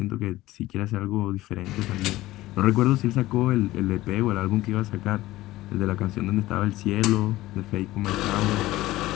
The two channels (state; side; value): quieter; right; 16.9 dB